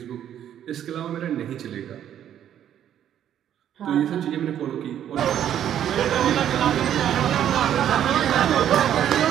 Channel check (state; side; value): quieter; left; 10.3 dB